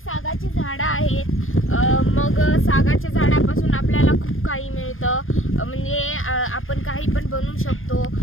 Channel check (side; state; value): right; late; 0.60 ms